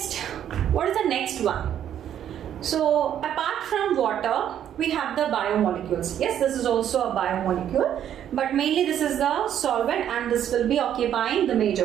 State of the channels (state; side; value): quieter; left; 10.2 dB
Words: what is the next one? So apart from water, we have the biomolecules. Yes, this is also a biomolecule, but mainly this is the solvent and this will be occupying the major